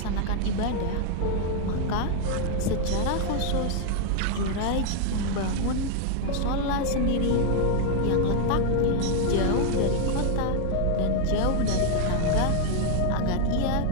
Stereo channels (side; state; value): both; different; correlation 0.00